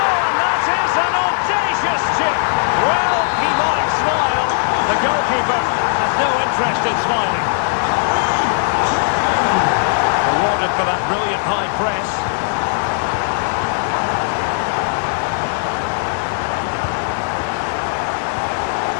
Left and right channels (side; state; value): right; silent; digital silence